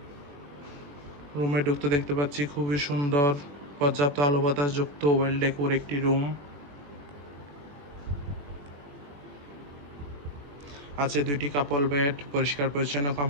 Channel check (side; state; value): left; late; 21 ms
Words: রুমে ঢুকতে দেখতে পাচ্ছি খুবই সুন্দর, পর্যাপ্ত আলো বাতাস যুক্ত ওয়েল ডেকোর একটি রুম। আছে দুইটি কাপল বেড, পরিষ্কার পরিচ্ছন্ন